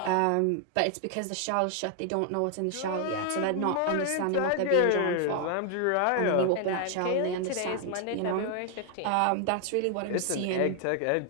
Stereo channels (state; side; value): different; both; correlation 0.00